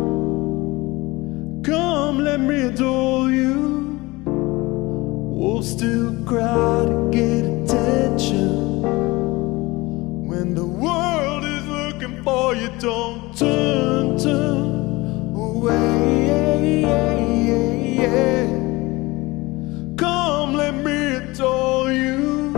Come, let me adore you. We'll still cry to get attention. When the world is looking for you, don't turn away. Come, let me adore you.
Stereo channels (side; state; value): right; quieter; 21.9 dB